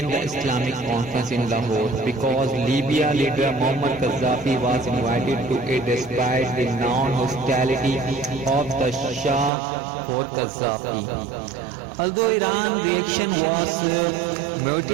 the Islamic conference in Lahore because Libya leader Muammar Gaddafi was invited to it despite the non-hostility of the Shah for Gaddafi. Although Iran's reaction was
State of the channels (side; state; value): left; drops out; at 9.5 s